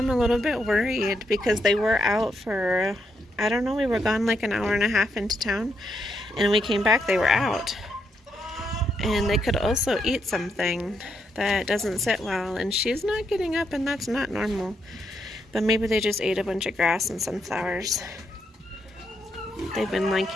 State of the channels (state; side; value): normal; both; correlation 0.79